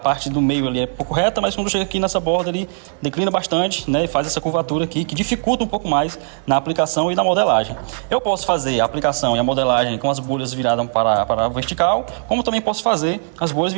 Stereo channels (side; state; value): left; silent; digital silence